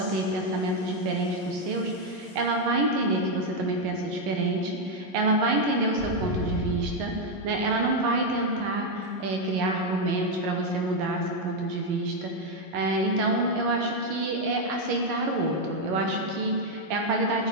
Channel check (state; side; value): late; left; 11 ms